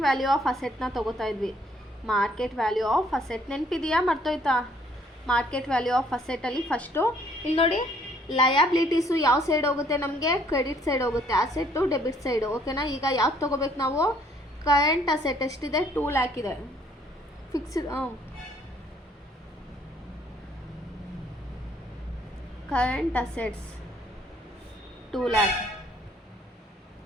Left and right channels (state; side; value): normal; both; correlation 0.63